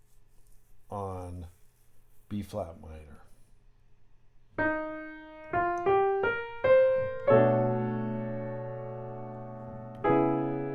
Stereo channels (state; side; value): identical; both; correlation 1.00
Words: on B flat minor,